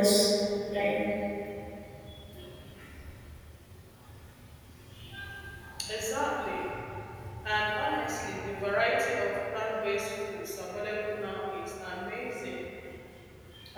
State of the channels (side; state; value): both; identical; correlation 1.00